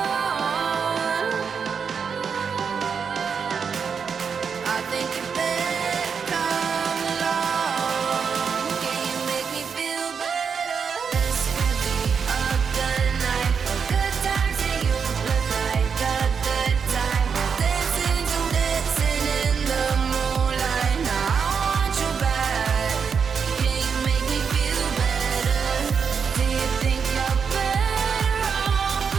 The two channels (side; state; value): left; quieter; 6.3 dB